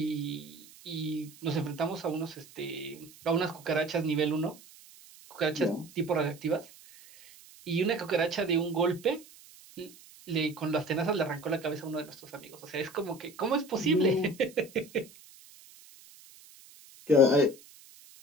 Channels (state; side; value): noise; right; hiss, 22 dB below the sound